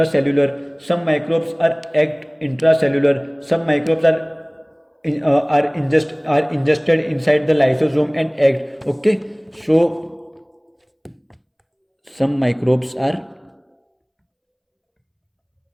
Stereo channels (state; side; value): identical; both; correlation 1.00